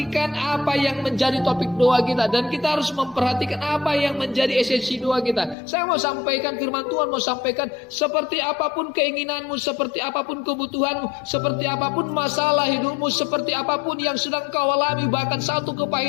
apa yang menjadi topik doa kita. Dan kita harus memperhatikan apa yang menjadi esensi doa kita. Saya mau sampaikan firman Tuhan, mau sampaikan seperti apapun keinginanmu, seperti apapun kebutuhanmu, seperti apapun masalah hidupmu, seperti apapun yang sedang kau alami, bahkan satu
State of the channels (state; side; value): drops out; right; at 5.6 s